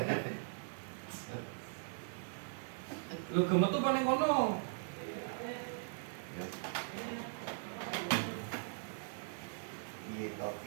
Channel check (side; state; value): left; silent; 51 dB below the other